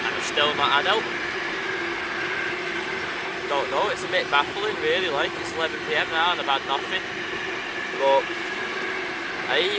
and I'm still not had out. Don't know, it's a bit baffling really, like it's 11 PM now and I've had nothing. But I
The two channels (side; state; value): both; identical; correlation 1.00